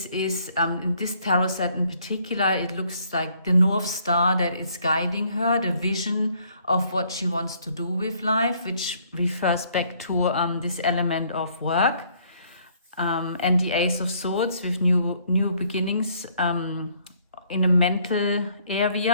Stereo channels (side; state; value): both; inverted; correlation -0.65